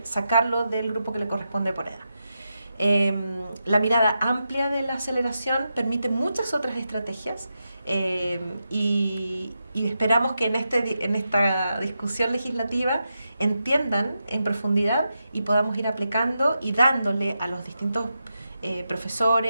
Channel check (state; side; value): inverted; both; correlation -0.87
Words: sacarlo del grupo que le corresponde por edad. La mirada amplia de la aceleración permite muchas otras estrategias y esperamos que en esta discusión legislativa entiendan en profundidad y podamos ir aplicando y dándole a los distintos